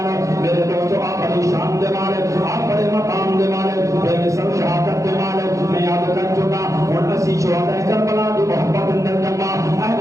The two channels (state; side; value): late; left; 0.15 ms